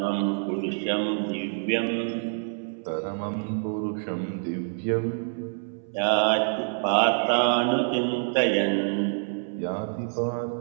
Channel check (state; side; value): silent; left; 60 dB below the other